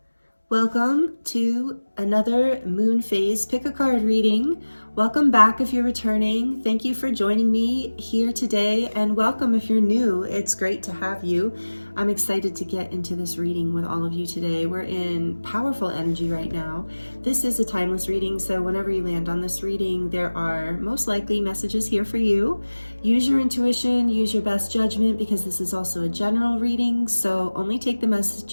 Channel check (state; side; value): inverted; both; correlation -1.00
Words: Welcome to another moon phase pick a card reading. Welcome back if you're returning. Thank you for joining me here today, and welcome if you're new. It's great to have you. I'm excited to get into this reading with all of you today. We're in powerful energy right now. This is a timeless reading, so whenever you land on this reading, there are most likely messages here for you. Use your intuition, use your best judgment, because this is also a general reading, so only take the